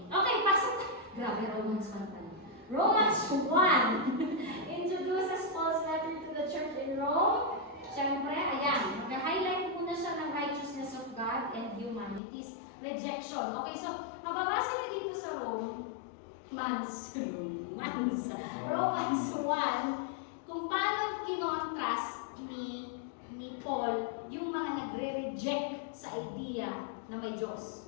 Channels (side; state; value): right; drops out; at 12.2 s